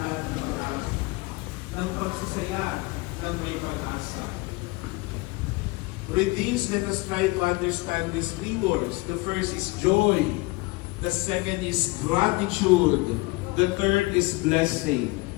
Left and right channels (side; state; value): right; quieter; 23.6 dB